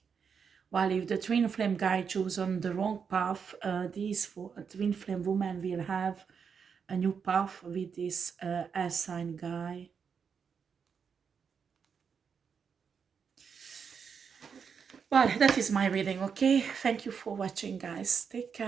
While if the twin flame guy chosen the wrong path, these twin flame women will have a new path with this air sign guy. Well, that is my reading, okay? Thank you for watching, guys. Take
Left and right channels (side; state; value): left; quieter; 6.4 dB